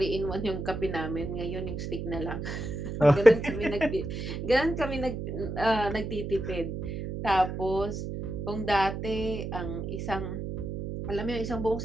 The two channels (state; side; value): noise; right; hum, 5 dB below the sound